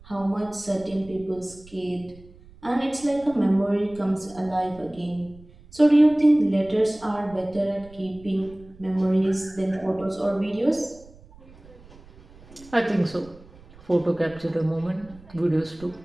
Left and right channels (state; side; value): noise; right; rumble, 23 dB below the sound